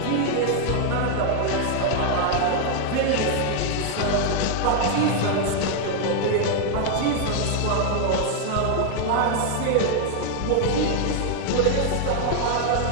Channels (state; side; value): different; both; correlation 0.00